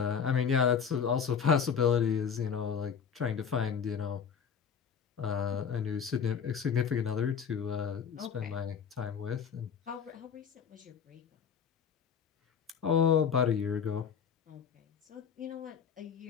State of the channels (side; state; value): right; quieter; 7.1 dB